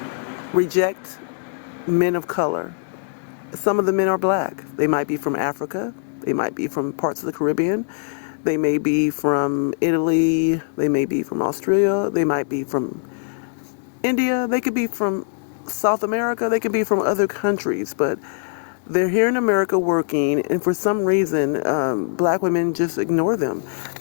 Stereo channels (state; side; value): silent; right; digital silence